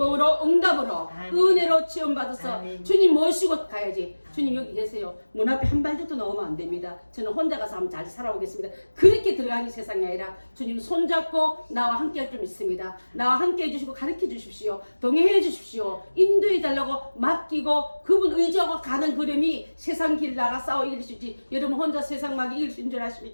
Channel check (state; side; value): inverted; both; correlation -1.00